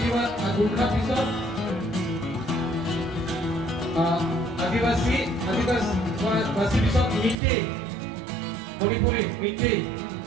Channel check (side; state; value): left; drops out; at 7.4 s